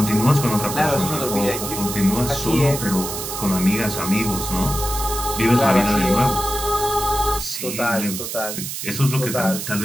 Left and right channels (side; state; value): right; noise; hiss, 6 dB below the sound